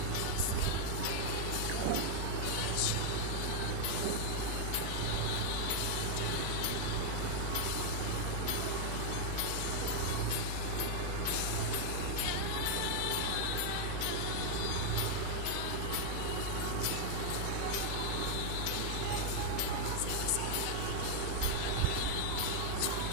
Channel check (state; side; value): different; both; correlation 0.00